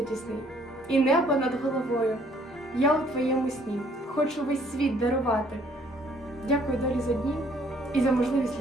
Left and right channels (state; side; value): normal; both; correlation 0.62